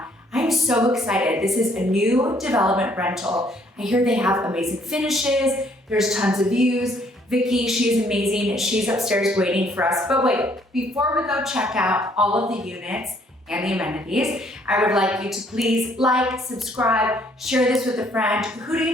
I'm so excited. This is a new development rental. I hear they have amazing finishes. There's tons of views. Vicky, she's amazing. She's upstairs waiting for us. But wait, before we go check out all of the units and the amenities, I would like you to please like, subscribe, share this with a friend. Who do you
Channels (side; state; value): both; normal; correlation 0.64